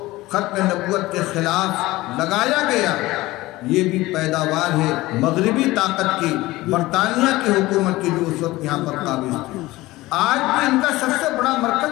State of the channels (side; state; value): right; quieter; 18.8 dB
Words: ختم نبوت کے خلاف لگایا گیا، یہ بھی پیداوار ہے مغربی طاقت کی، برطانیہ کی حکومت کی جو اس وقت یہاں پر قابض تھی۔ آج بھی ان کا سب سے بڑا